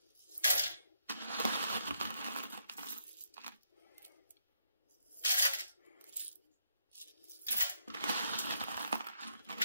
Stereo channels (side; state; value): both; inverted; correlation -0.77